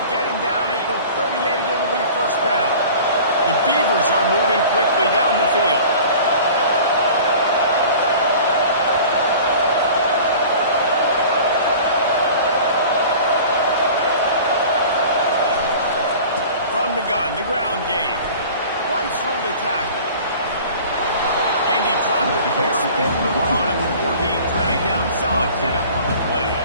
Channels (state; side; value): inverted; both; correlation -0.43